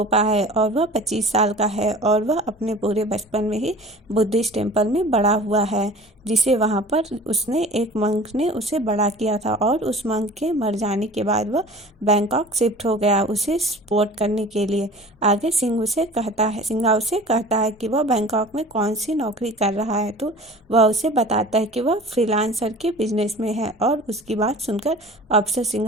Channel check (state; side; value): normal; both; correlation 0.42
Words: है और वह 25 साल का है और वह अपने पूरे बचपन में ही बुद्धिस्ट टेम्पल में बड़ा हुआ है, जिसे वहाँ पर उसने एक मंक ने उसे बड़ा किया था। और उस मंक के मर जाने के बाद वह बैंकॉक शिफ्ट हो गया उसे सपोर्ट करने के लिए। आगे सिंघा उसे कहता है कि वह बैंकॉक में कौन सी नौकरी कर रहा है, तो वह उसे बताता है कि वह फ्रीलांसर के बिजनेस में है। और उसकी बात सुनकर अफसर